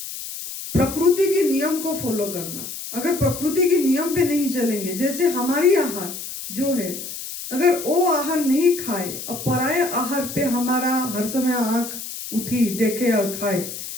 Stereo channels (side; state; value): left; noise; hiss, 9 dB below the sound